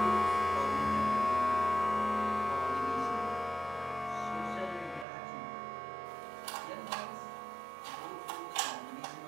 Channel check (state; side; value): drops out; left; at 5.1 s